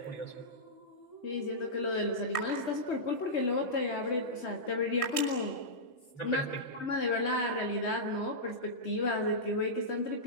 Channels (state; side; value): late; right; 3.2 ms